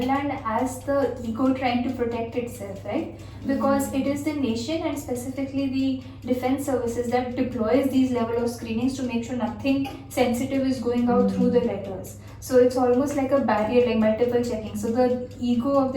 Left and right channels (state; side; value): identical; both; correlation 1.00